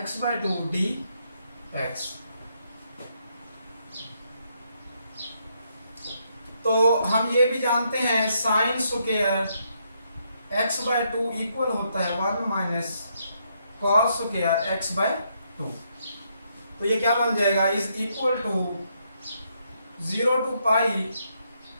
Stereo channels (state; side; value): inverted; both; correlation -0.76